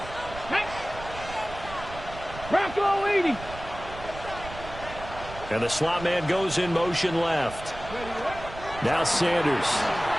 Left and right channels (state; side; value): noise; right; rumble, 13 dB below the sound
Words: Bronco 80. And the slot man goes in motion left. Now Sanders.